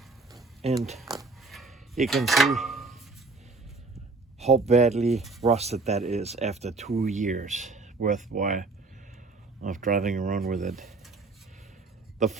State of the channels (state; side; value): quieter; left; 3.8 dB